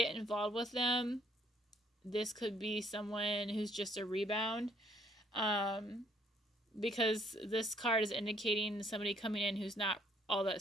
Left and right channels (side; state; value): both; normal; correlation 0.64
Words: involved with them, this could be someone who's just a rebound. Because this card is indicating somebody coming in who's not all that